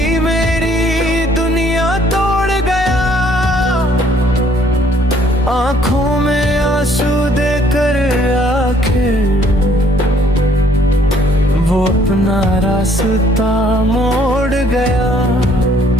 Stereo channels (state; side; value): normal; both; correlation 0.62